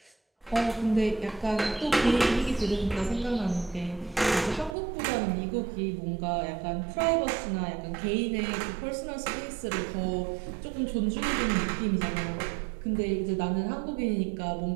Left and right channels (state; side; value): drops out; left; at 4.8 s